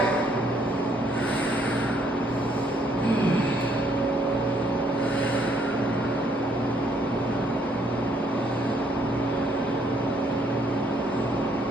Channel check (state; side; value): normal; both; correlation 0.68